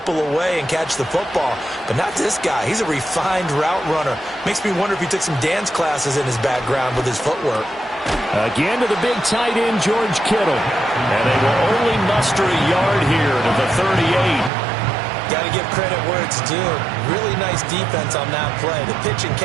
away and catch the football. But not this guy. He's a refined route runner. Makes me wonder if he took some dance classes in his background with his footwork. Again to the big tight end, George Kittle. And they will only muster a yard here to the 38. Got to give credit where it's due. Really nice defense on that play. The pitch and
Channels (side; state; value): left; drops out; at 14.5 s